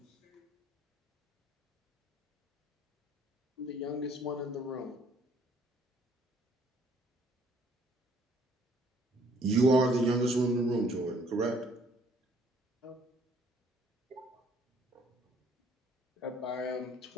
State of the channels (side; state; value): both; normal; correlation 0.61